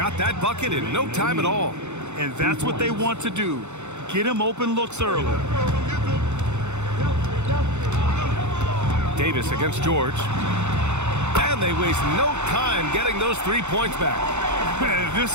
that bucket in no time at all. And that's what they want to do. Get him open looks early. Davis against George. And they waste no time getting those 3 points back. Man,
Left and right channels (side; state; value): left; late; 0.83 ms